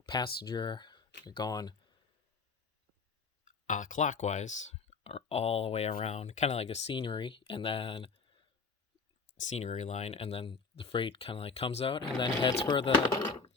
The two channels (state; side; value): quieter; right; 4.6 dB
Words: passenger going clockwise or all the way around, kind of like a scenery, and then scenery line, and then the freight kind of like comes out and then heads for the